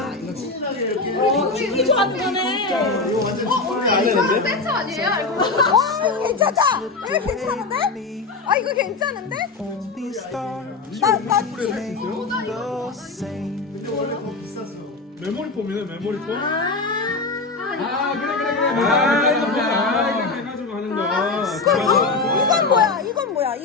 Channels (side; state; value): right; quieter; 3.8 dB